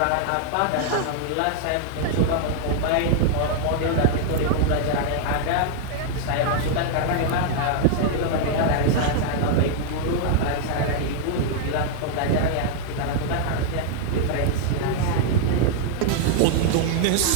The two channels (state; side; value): different; both; correlation -0.01